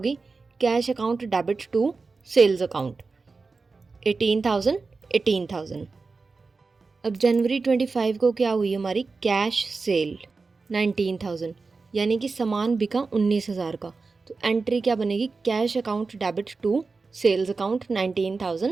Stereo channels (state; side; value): quieter; left; 4.2 dB